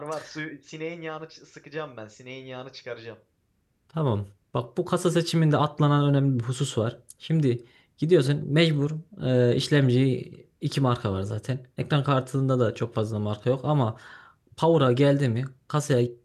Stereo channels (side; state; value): both; identical; correlation 1.00